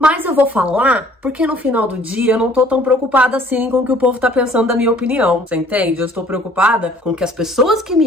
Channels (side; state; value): both; normal; correlation 0.56